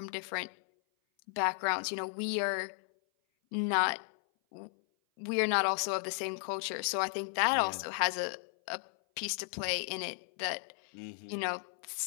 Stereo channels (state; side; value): silent; right; 55 dB below the other